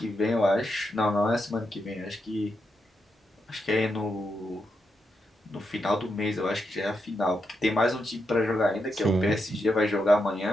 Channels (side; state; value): both; normal; correlation 0.84